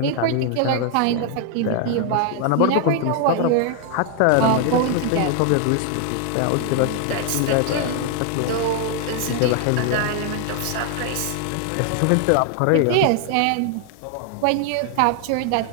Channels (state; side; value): different; both; correlation 0.00